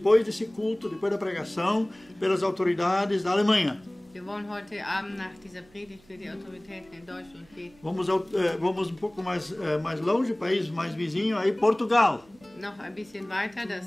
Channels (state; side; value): noise; right; hum, 28 dB below the sound